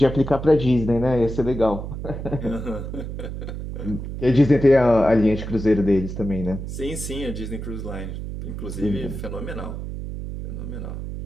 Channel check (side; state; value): right; noise; hum, 7 dB below the sound